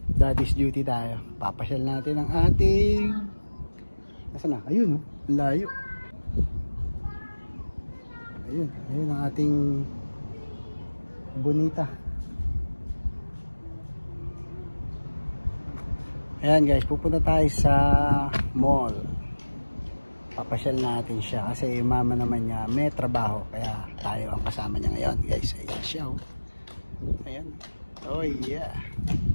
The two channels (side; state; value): both; inverted; correlation -1.00